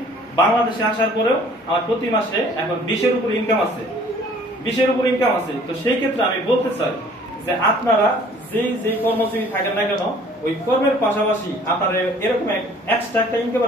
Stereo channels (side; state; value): both; normal; correlation 0.54